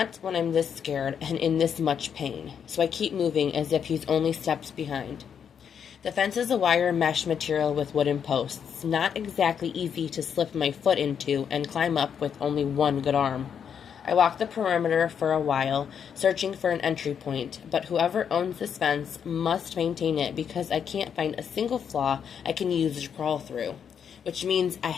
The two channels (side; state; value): right; quieter; 7.7 dB